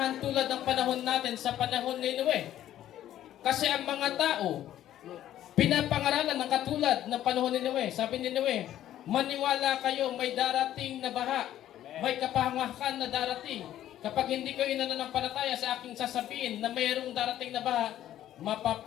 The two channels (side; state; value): right; quieter; 12.3 dB